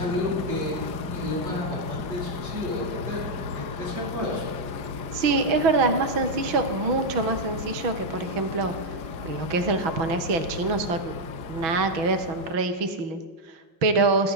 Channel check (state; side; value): late; left; 6.1 ms